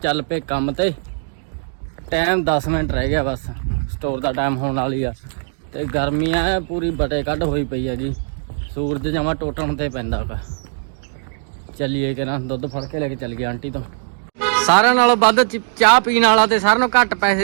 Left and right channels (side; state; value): left; silent; digital silence